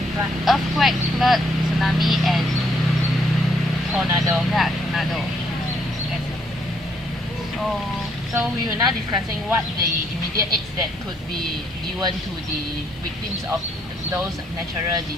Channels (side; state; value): both; normal; correlation 0.70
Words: earthquake, flood, tsunami, and Tornado. yeah, tornado. Yes. So we are now discussing what the immediate aids that could be given to the victims of those natural